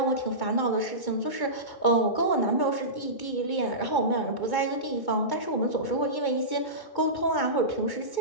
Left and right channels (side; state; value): right; late; 2.2 ms